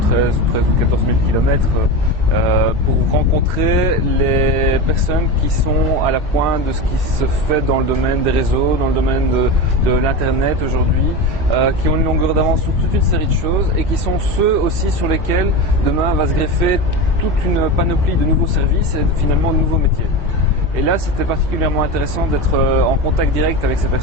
13 ou 14 000 km pour rencontrer les personnes qui sont à la pointe de ce qui se fait dans le domaine des réseaux, dans le domaine de l'Internet aujourd'hui, qui ont une longueur d'avance sur toute une série de choses et qui sont ceux aussi sur lesquels demain va se greffer toute une panoplie de nouveaux services et finalement de nouveaux métiers. Et là, c'était particulièrement intéressant d'être en contact direct avec ces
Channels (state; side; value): normal; both; correlation 0.22